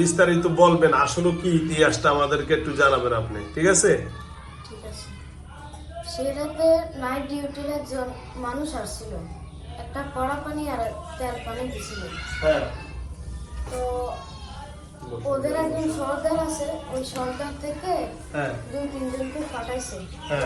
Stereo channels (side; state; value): both; identical; correlation 1.00